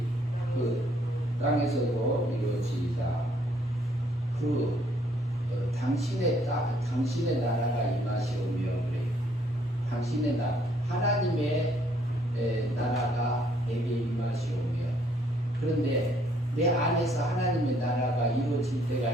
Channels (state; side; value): normal; both; correlation 0.66